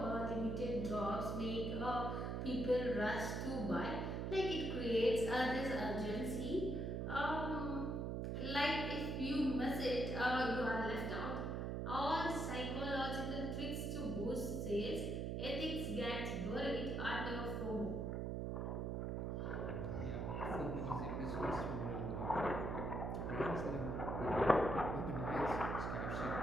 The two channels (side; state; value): right; noise; hum, 1 dB below the sound